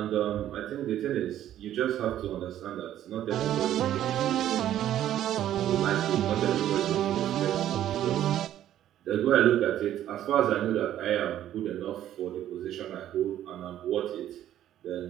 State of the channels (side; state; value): left; quieter; 11.9 dB